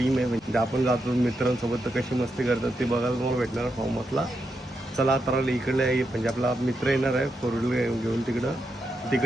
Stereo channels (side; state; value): both; normal; correlation 0.84